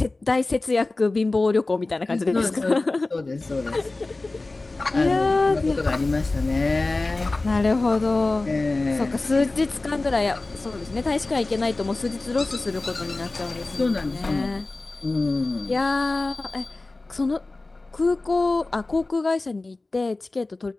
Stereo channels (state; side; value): quieter; right; 3.2 dB